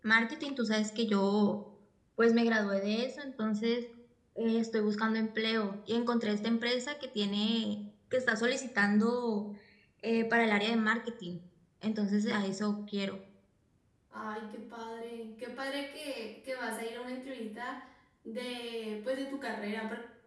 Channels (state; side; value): identical; both; correlation 1.00